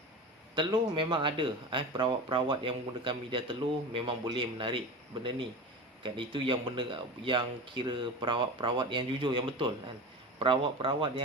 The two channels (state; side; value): normal; both; correlation 0.29